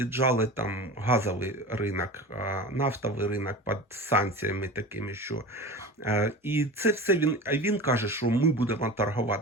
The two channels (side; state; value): both; normal; correlation 0.33